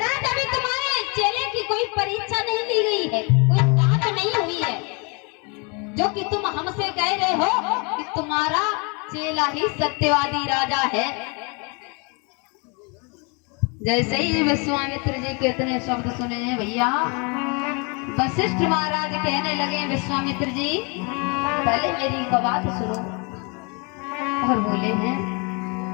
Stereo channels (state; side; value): quieter; right; 32.3 dB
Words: अभी तुम्हारे चेले की कोई परीक्षा नहीं ली गई है, कोई जांच नहीं हुई है, जो कि तुम हमसे कह रहे हो कि तुम्हारा चेला ही सत्यवादी राजा है। जैसे ही विश्वामित्र जी के इतने शब्द सुने हैं भैया, वशिष्ठ महाराज कहने लगे विश्वामित्र जी पहले मेरी एक बात सुनो। और बोले हैं